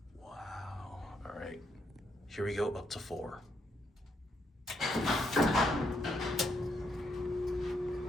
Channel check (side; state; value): both; normal; correlation 0.76